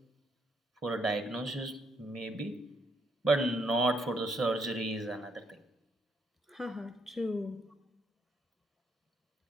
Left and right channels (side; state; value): both; normal; correlation 0.73